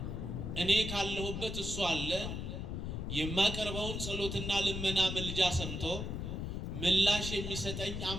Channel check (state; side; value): noise; left; rumble, 4 dB below the sound